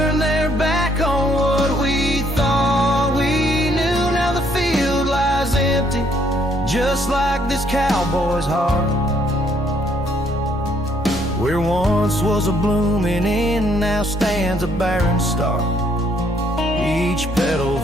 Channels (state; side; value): normal; both; correlation 0.68